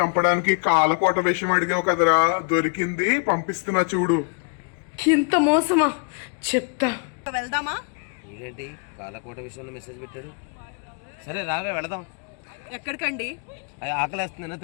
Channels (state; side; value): quieter; right; 36.7 dB